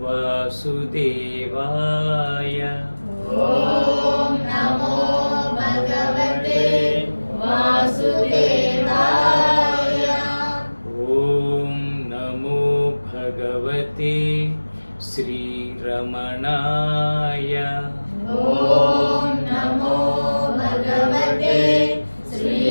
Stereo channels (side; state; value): both; inverted; correlation -1.00